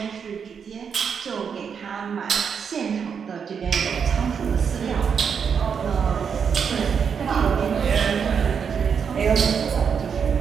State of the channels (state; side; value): quieter; left; 6.8 dB